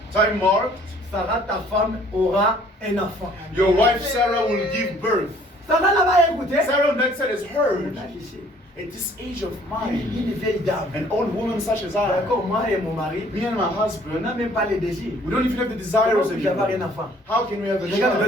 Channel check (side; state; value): both; normal; correlation 0.58